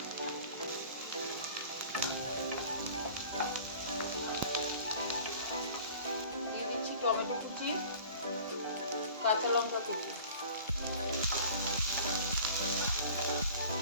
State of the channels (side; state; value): both; inverted; correlation -0.45